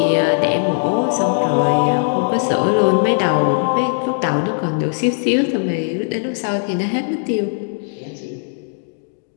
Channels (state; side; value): silent; right; 67 dB below the other